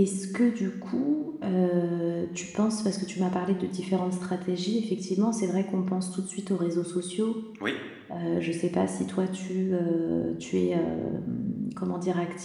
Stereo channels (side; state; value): both; identical; correlation 1.00